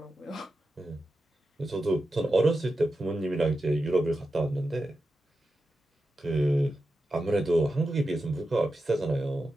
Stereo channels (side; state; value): both; normal; correlation 0.90